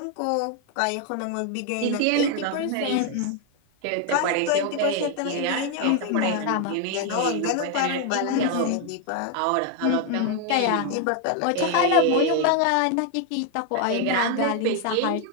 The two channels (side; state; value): both; different; correlation 0.01